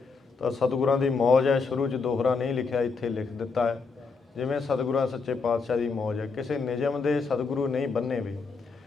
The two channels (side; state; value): right; quieter; 4.6 dB